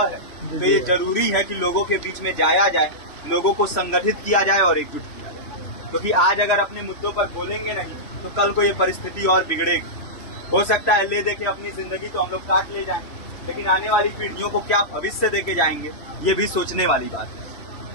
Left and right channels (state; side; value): late; right; 3.0 ms